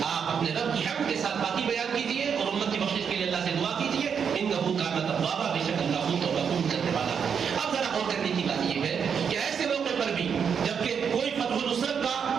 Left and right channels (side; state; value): left; quieter; 7.0 dB